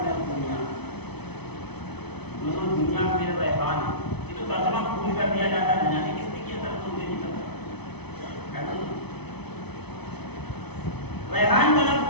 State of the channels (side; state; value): right; late; 0.99 ms